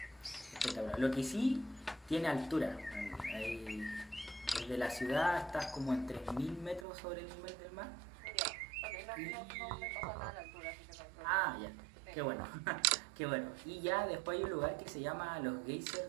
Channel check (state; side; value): drops out; left; at 6.9 s